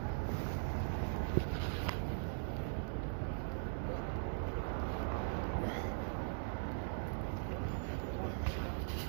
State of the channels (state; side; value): silent; left; digital silence